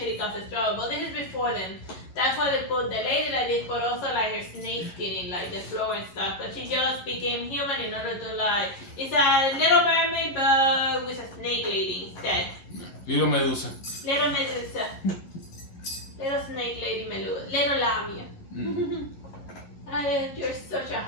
causes trouble. But this is before them. That's why they put the lady like this, but also like her snake skin in like the floor and stuff. But she just became human in order to like, it's a little mermaid but with a snake lady instead. Little Medusa. Little Medusa. Little snake lady Medusa. Little Lamia. You're such a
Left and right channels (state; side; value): late; right; 11 ms